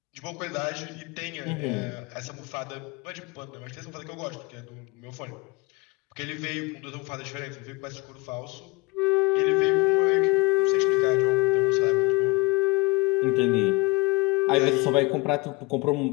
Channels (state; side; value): quieter; right; 24.7 dB